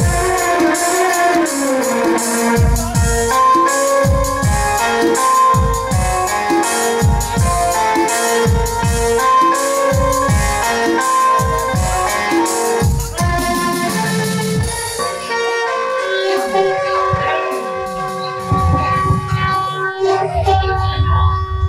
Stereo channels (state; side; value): identical; both; correlation 1.00